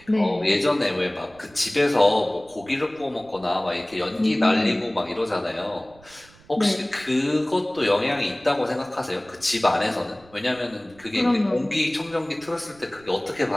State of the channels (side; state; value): right; noise; rumble, 26 dB below the sound